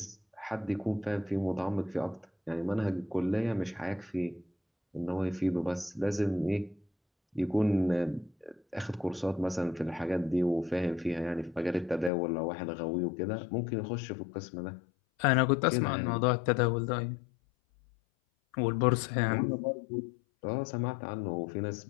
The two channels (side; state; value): right; drops out; at 12.1 s